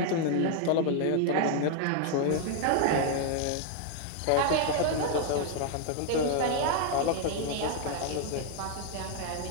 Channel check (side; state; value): both; different; correlation 0.00